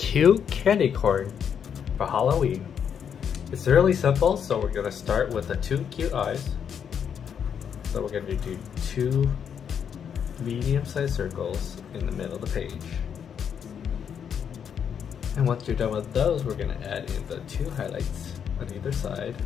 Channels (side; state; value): right; quieter; 7.8 dB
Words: candy corn for Halloween. It's really simple, so we're going to start with the two cute eyes. So we're going to do two medium-sized circles in the middle of the page. And once you're done with those, we're going to add in the two highlights on either side